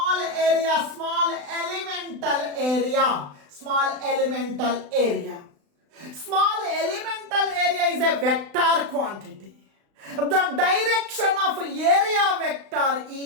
elemental area. Small elemental area is a vector quantity. The direction of area vector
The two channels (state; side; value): late; left; 35 ms